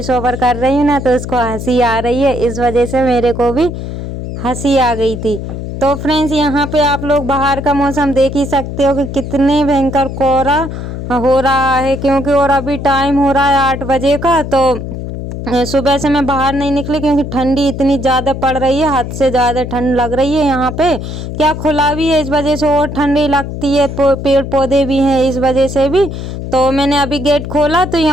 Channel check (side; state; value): left; noise; hum, 7 dB below the sound